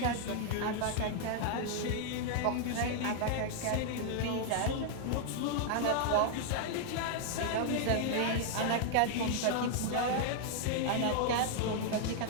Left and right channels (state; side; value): different; both; correlation -0.01